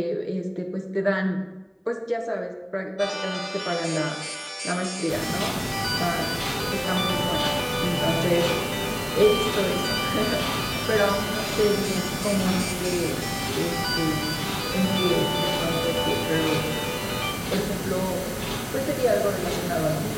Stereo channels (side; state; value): both; identical; correlation 1.00